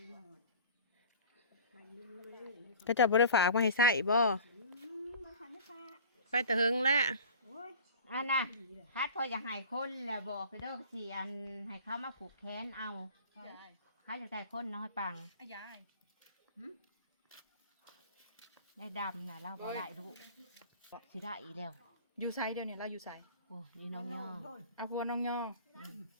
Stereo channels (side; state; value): both; inverted; correlation -0.42